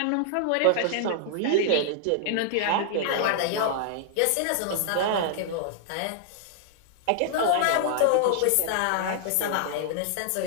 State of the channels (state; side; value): different; both; correlation -0.01